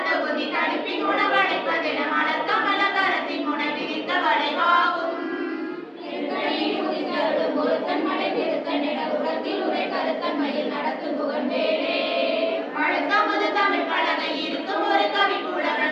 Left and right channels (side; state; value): both; identical; correlation 1.00